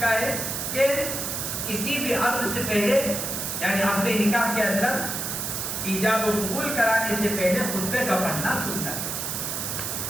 ہے کہ کسی بھی عقد سے پہلے یعنی عقد نکاح کے اندر ایجاب و قبول کرانے سے پہلے خطبے کا پڑھنا سنت ہے.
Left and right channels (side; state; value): right; noise; hiss, 3 dB below the sound